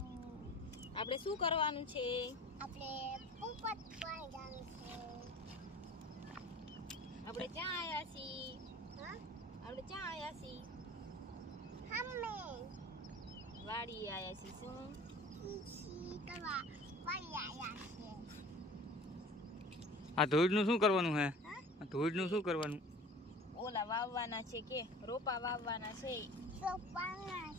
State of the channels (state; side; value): normal; both; correlation 0.43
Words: આપણે શું કરવાનું છે? આપણે પોપટ પાણી જવાનું છે. આપણે ક્યાં આયા છીએ? હા? આપણે ક્યાં આયા છીએ? હમે વાડી આયા છીએ. શું? ઈસી કરવા વાળી આયા છે. આ ધોઈડનું શું કરવાનું હે? હા? આ ધોઈડનું શું કરવાનું? ઓલા વાવવાના છે કે રોપા વાવવાના છે, તો પાણા